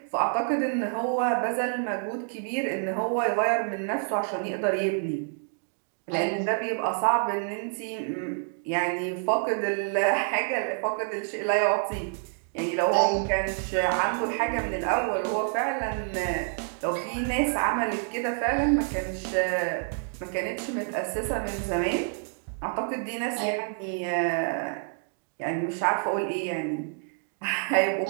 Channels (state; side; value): silent; left; 58 dB below the other